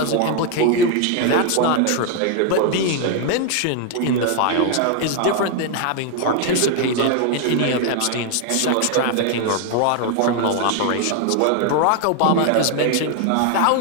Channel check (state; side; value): different; both; correlation 0.00